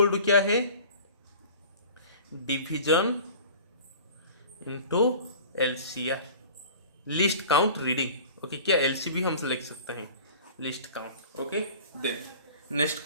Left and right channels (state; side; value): inverted; both; correlation -0.43